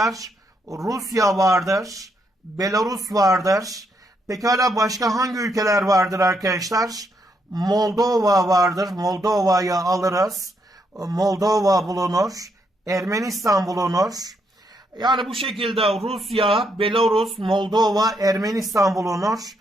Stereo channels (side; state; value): both; normal; correlation 0.77